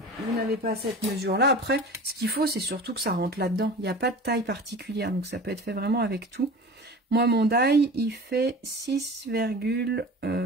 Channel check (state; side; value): normal; both; correlation 0.37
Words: vous n'avez pas cette mesure-là, après, ce qu'il faut, c'est surtout que ça rentre là-dedans. Il n'y a pas de taille particulière. Donc, ça peut être fait vraiment avec tout. Moi, mon die, il fait